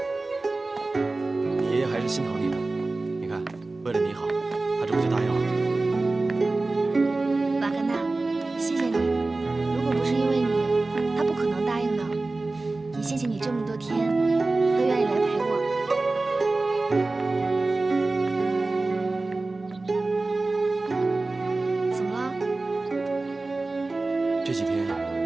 你爷爷还是心疼你的。你看，为了你好，他这不就答应了？瓦格纳，谢谢你。如果不是因为你，他不可能答应的。也谢谢你这么多天都愿意来陪我。怎么了？这几天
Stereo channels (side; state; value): left; quieter; 3.3 dB